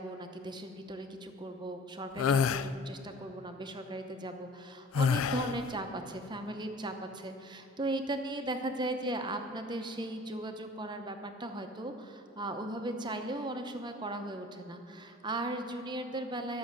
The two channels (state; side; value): normal; both; correlation 0.46